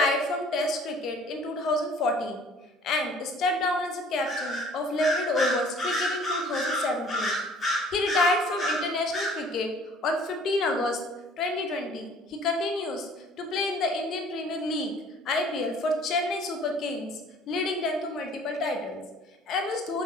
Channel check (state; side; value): normal; both; correlation 0.53